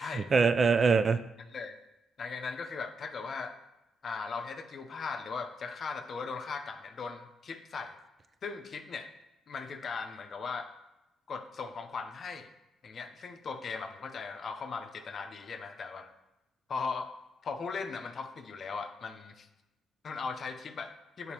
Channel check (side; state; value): both; normal; correlation 0.81